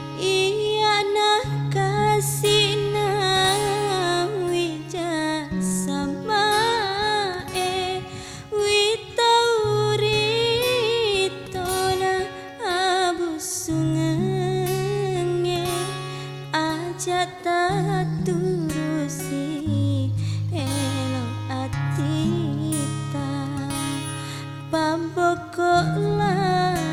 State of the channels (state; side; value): identical; both; correlation 1.00